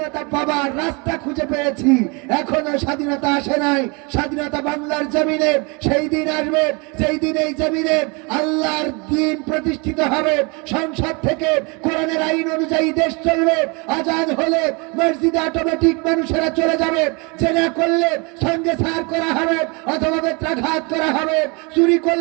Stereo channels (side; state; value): left; quieter; 30.1 dB